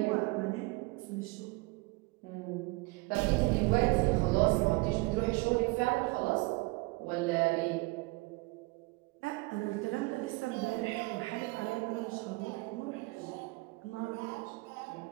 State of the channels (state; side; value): quieter; left; 25.2 dB